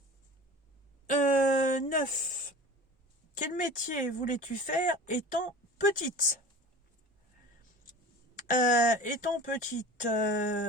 9. Quel métier voulais-tu faire étant petite? Étant petite,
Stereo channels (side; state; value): both; normal; correlation 0.38